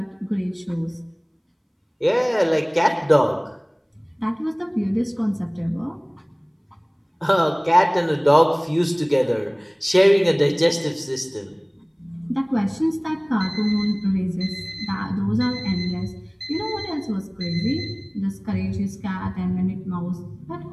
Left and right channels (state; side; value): identical; both; correlation 1.00